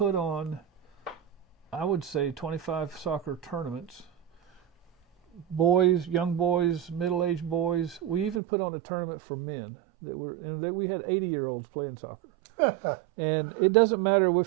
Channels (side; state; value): left; drops out; at 8.4 s